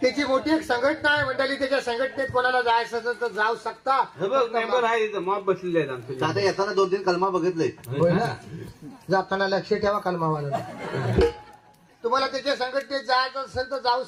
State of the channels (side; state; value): both; identical; correlation 1.00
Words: त्याची मोठी एक संघटना आहे मंडळी. त्याच्या संघटनेत कोणाला जायचं असेल तर जाऊ शकता. मेंबर आहे इथं मॉब बसलेले आहेत आमचे. आता येताना 2-3 कलमा बघितले. होय ना? जाताना लक्ष ठेवा कलमावाला. तुम्हाला त्याच्या संघटनेत जायचं असेल तर जाऊ